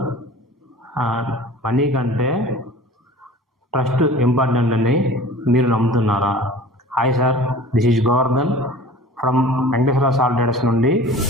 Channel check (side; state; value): both; normal; correlation 0.42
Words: money కంటే trust important అని మీరు నమ్ముతున్నారా? Hi sir, this is Govardhan from Venkateswara salt traders నుండి